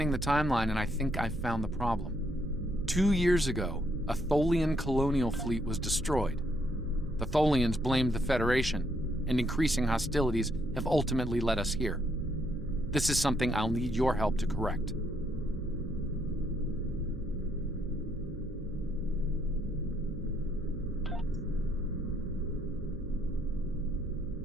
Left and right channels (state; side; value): noise; right; hum, 10 dB below the sound